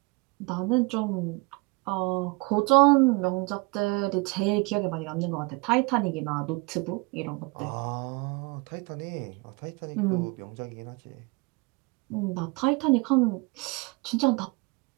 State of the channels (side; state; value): left; quieter; 27.0 dB